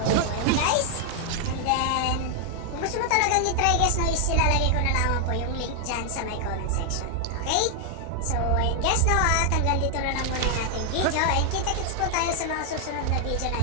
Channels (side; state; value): both; different; correlation 0.00